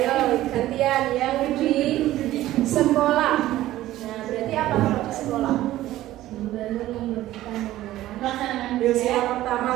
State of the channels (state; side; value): quieter; left; 14.9 dB